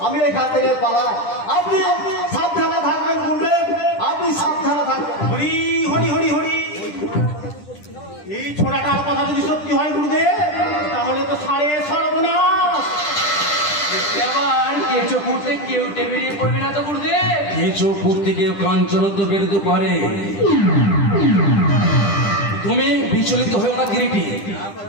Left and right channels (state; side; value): late; right; 10 ms